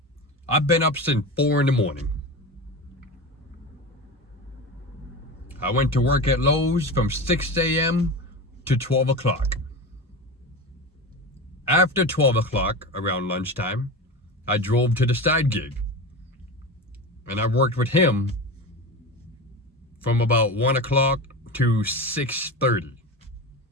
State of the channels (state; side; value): normal; both; correlation 0.26